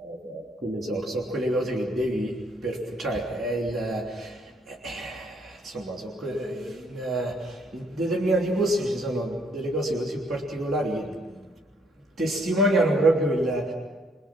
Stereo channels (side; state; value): both; normal; correlation 0.68